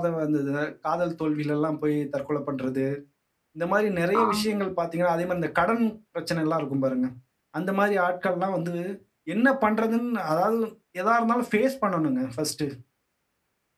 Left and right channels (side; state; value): both; identical; correlation 1.00